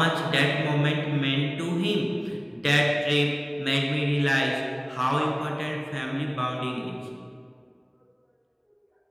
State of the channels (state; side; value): identical; both; correlation 1.00